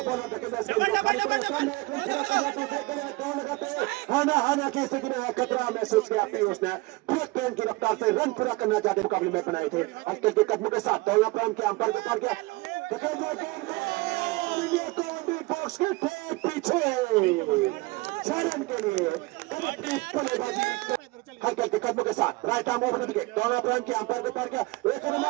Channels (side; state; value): left; quieter; 22.3 dB